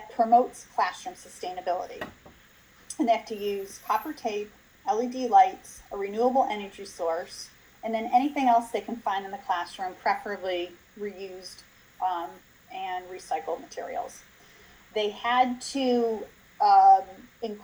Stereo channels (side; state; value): both; identical; correlation 1.00